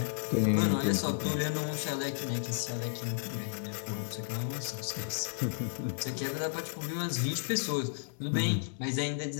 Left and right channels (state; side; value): silent; right; 56 dB below the other